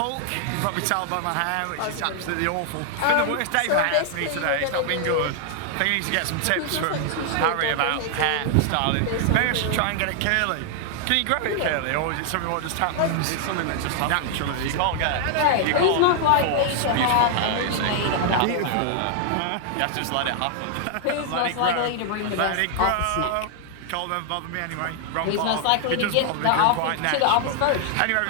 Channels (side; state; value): both; different; correlation 0.00